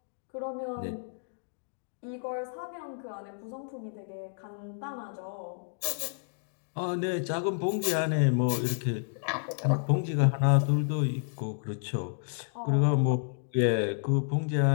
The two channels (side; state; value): right; silent; digital silence